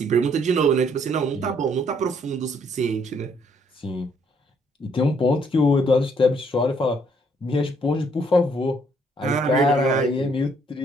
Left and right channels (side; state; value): both; normal; correlation 0.67